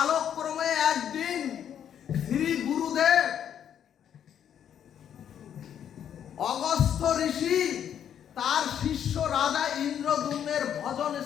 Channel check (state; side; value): quieter; right; 9.3 dB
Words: একদিন শ্রী গুরুদেব অগস্ত্য ঋষি তার শিষ্য রাজা ইন্দ্রদ্যুম্নের ভজন